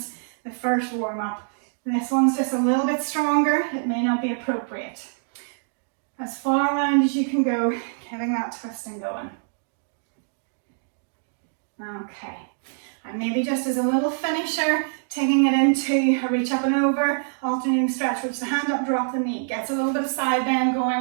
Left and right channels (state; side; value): silent; left; digital silence